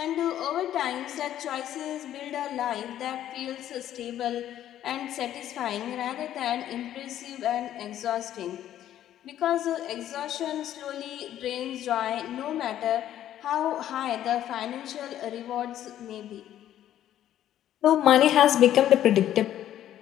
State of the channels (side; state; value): right; quieter; 11.7 dB